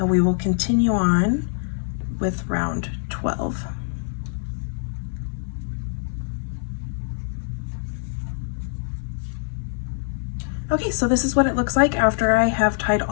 we will continue on with round 12. Okay, so this is what it looks like after I have tied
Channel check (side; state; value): right; silent; 63 dB below the other